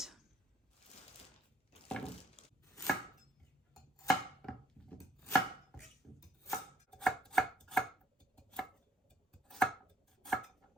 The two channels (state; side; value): normal; both; correlation 0.67